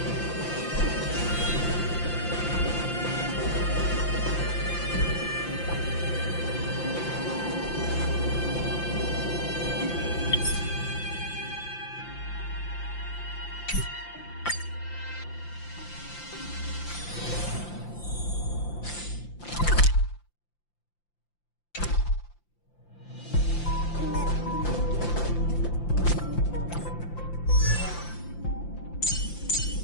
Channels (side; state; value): right; late; 5.8 ms